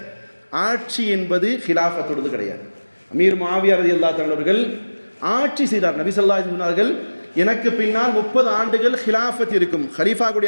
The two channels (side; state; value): both; inverted; correlation -1.00